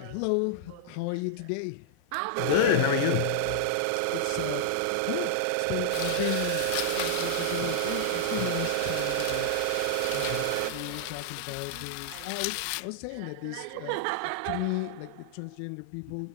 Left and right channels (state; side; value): different; both; correlation -0.01